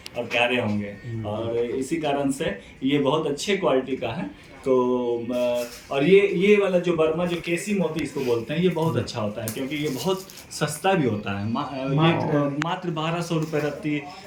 और प्यारे होंगे। और इसी कारण से ये बहुत अच्छे क्वालिटी का है। तो और ये वाला जो बर्मा जो केसी मोती इसको बोलते हैं, ये बहुत अच्छा होता है क्योंकि ये बहुत सस्ता भी होता है। मात्र 1200 रुपये रत्ती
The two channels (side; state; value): both; identical; correlation 1.00